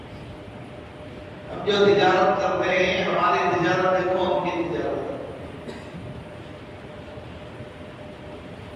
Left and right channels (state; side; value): identical; both; correlation 1.00